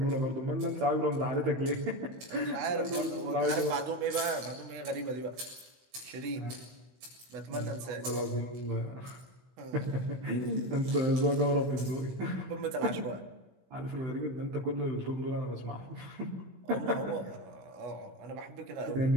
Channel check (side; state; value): left; late; 16 ms